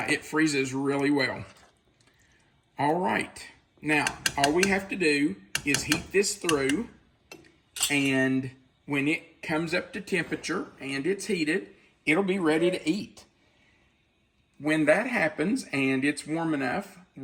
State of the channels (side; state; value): both; identical; correlation 1.00